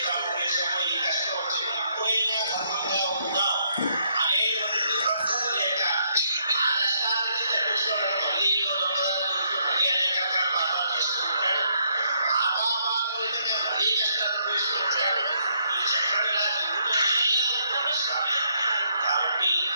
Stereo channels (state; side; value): inverted; both; correlation -0.73